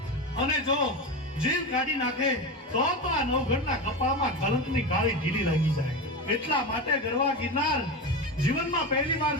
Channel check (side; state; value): both; normal; correlation 0.20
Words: અને જો જીવ કાઢી નાખે તો આ નવઘણના કપાળમાં કલંકની કાળી ઢીલી લાગી જાય. એટલા માટે ગરવા ગિરનાર જીવનમાં પહેલી વાર